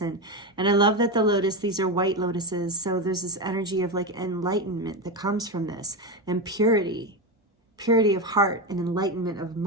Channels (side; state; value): both; normal; correlation 0.15